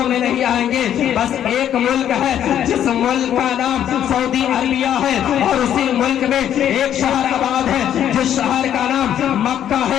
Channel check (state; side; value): quieter; right; 10.3 dB